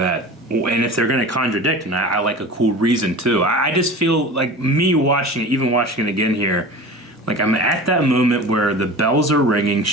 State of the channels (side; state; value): both; normal; correlation 0.35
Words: And if they're going to contradict, and I like a cool reason too. I just feel like me watching it, even watching it again here, Like, I'm at that moment where the bells are ringing.